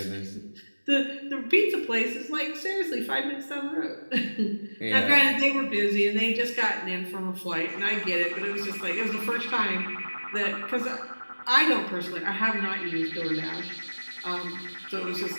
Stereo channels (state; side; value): inverted; both; correlation -1.00